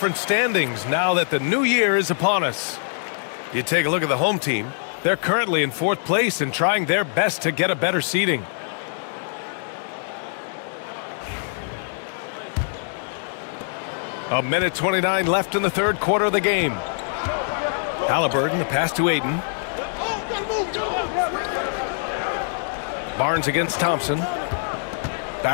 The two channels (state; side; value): silent; right; digital silence